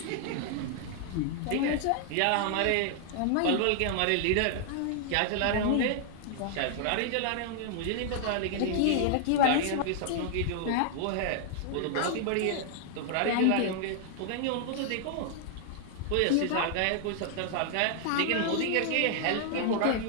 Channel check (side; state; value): both; different; correlation -0.01